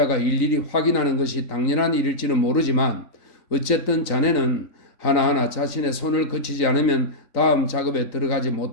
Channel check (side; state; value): right; late; 3.9 ms